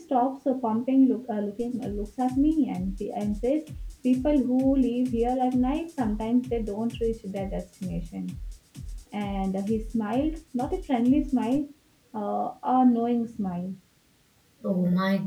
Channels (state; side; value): identical; both; correlation 1.00